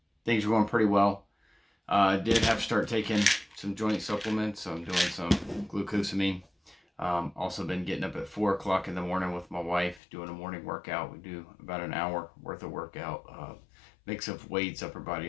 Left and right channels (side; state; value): right; drops out; at 10.0 s